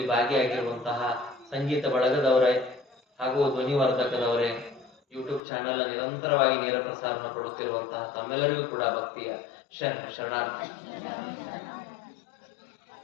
ಭಾಗಿಯಾಗಿರುವಂತಹ ಸಂಗೀತ ಬಳಗದವರೇ ಹಾಗೂ ಧ್ವನಿವರ್ಧಕದವರೇ, ಯೂಟ್ಯೂಬ್ ಚಾನೆಲ್ ನಿರಂತರವಾಗಿ ನೇರ ಪ್ರಸಾರ ಕೊಡುತ್ತಿರುವಂತಹ ತಮ್ಮೆಲ್ಲರಿಗೂ ಕೂಡ ಭಕ್ತಿಯ ಶರಣಾರ್ಥಿ.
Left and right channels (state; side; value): drops out; right; at 5.4 s